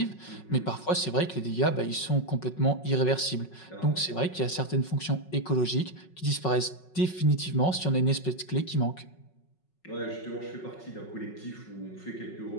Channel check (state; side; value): late; right; 5.4 ms